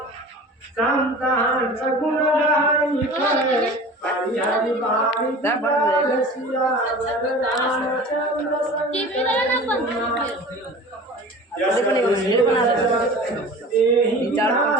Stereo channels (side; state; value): both; normal; correlation 0.39